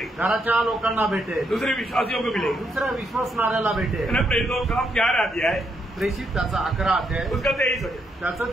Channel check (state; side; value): normal; both; correlation 0.78